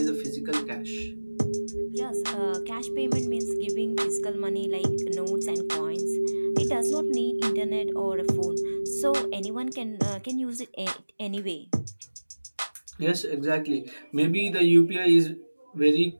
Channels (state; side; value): inverted; both; correlation -1.00